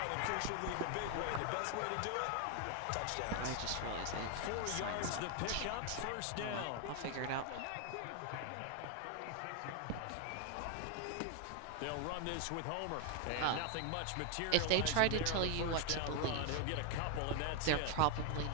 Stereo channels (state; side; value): different; both; correlation 0.01